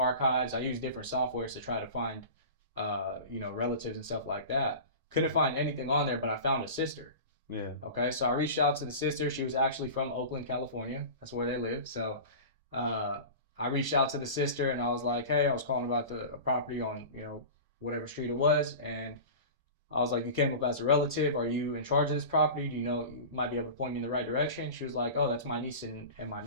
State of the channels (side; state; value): both; inverted; correlation -0.33